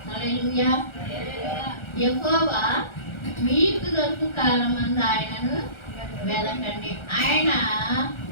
హల్లెలూయా. యెహోవా మీకు దొరుకు కాలమందు ఆయనను వెదకండి. ఆయన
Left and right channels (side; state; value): right; late; 1.3 ms